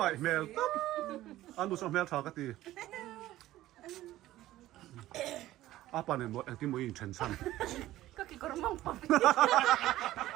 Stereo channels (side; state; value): left; quieter; 15.2 dB